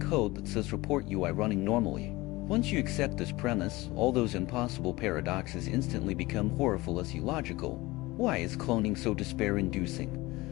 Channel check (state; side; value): quieter; right; 20.7 dB